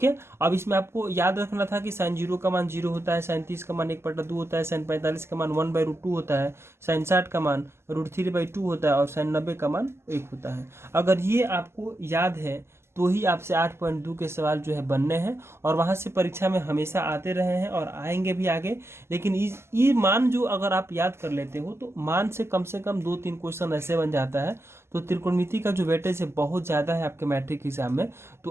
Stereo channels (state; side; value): late; left; 0.12 ms